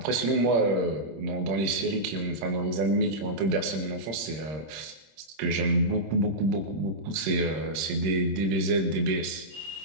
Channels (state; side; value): late; left; 26 ms